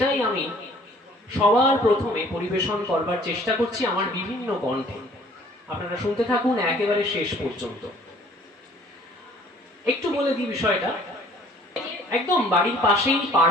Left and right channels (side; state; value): both; normal; correlation 0.55